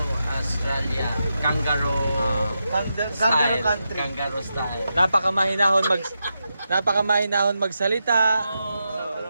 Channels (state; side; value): inverted; both; correlation -0.87